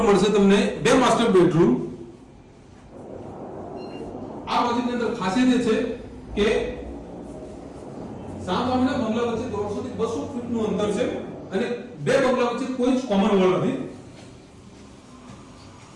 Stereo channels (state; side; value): identical; both; correlation 1.00